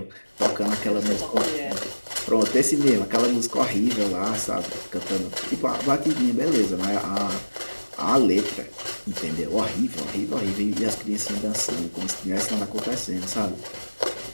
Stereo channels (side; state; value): both; inverted; correlation -1.00